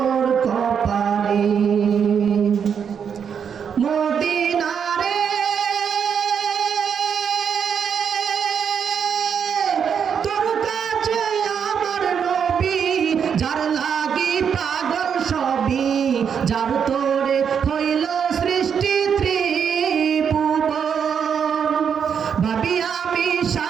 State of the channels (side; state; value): left; quieter; 7.3 dB